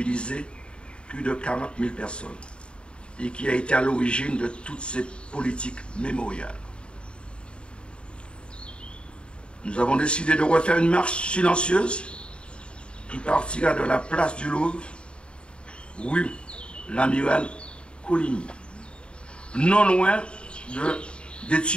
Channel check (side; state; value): right; late; 0.054 ms